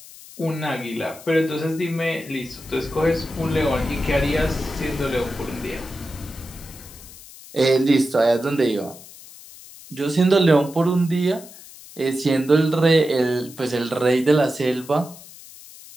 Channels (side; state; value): left; noise; hiss, 18 dB below the sound